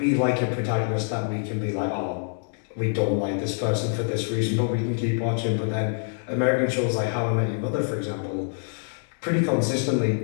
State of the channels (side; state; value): right; silent; digital silence